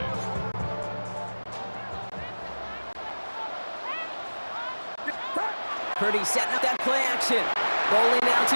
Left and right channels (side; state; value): both; inverted; correlation -1.00